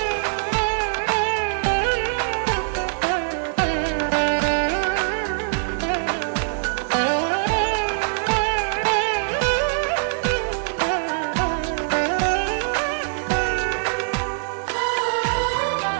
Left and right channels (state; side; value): silent; left; 64 dB below the other